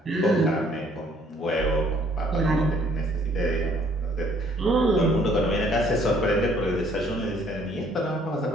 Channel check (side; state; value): both; normal; correlation 0.61